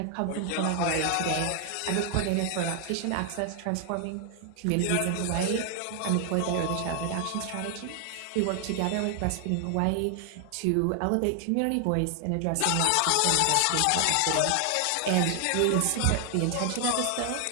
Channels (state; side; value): different; both; correlation 0.00